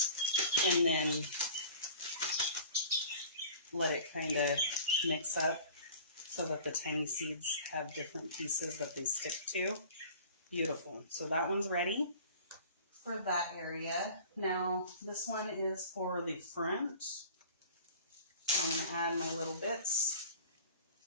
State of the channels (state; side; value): inverted; both; correlation -0.43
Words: And then let it kind of mix up so that the tiny seeds have different pieces that they stick to. Beautiful. So that one's ready for that area. Now this one is for the front. So I'm going to add my little bits